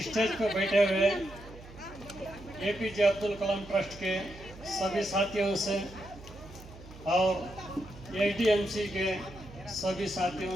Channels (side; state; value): right; noise; hum, 18 dB below the sound